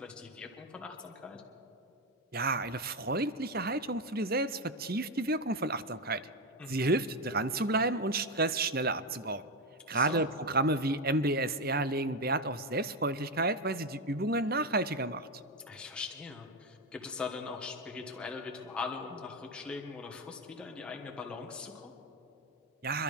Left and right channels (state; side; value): normal; both; correlation 0.10